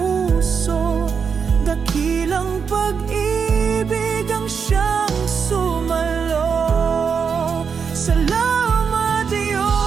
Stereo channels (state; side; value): quieter; left; 6.2 dB